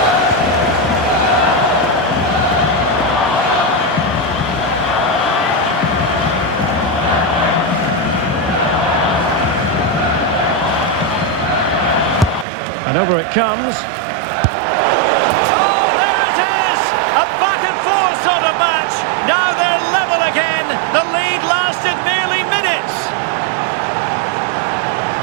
And over it comes. Oh, there it is! A back-and-forth sort of match. Now they're level again. The lead lasted merely minutes.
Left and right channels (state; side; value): drops out; left; at 12.5 s